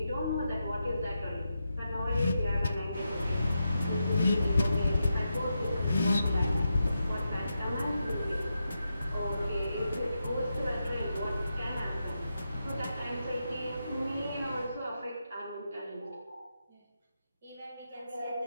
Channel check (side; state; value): both; inverted; correlation -0.87